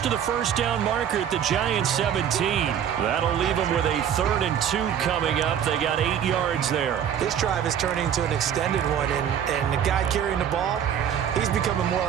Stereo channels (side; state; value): left; quieter; 9.0 dB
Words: to the 1st down marker at the Giants 17. That'll leave them with a 3rd and 2 coming up. They got 8 yards there. This drive is turning into an extended one, and the guy carrying the ball, he's becoming more